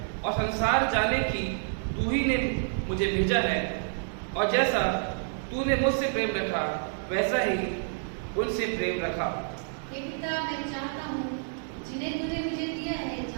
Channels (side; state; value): left; silent; digital silence